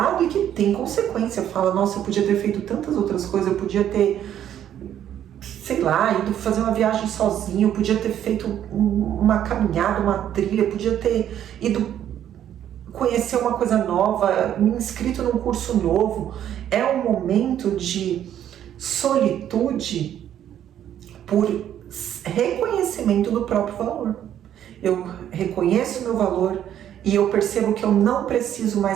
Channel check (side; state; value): left; quieter; 10.6 dB